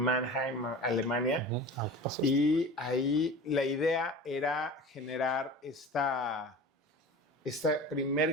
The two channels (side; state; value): both; normal; correlation 0.36